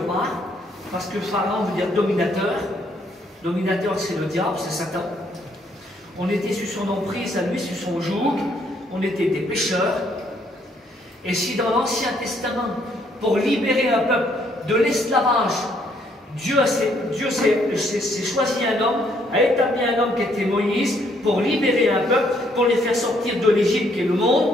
parce que Pharaon veut dire dominateur. Dominateur, c'est le diable, c'est Satan. On était sous son emprise, à lui, sous son joug. On était des pécheurs. Et si dans l'Ancien Testament, pour libérer un peuple de l'esclavage Dieu s'est choisi un homme, a établi un homme qui était Moïse, pour libérer un peuple, pour les faire sortir de l'Égypte qui est le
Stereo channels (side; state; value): both; normal; correlation 0.69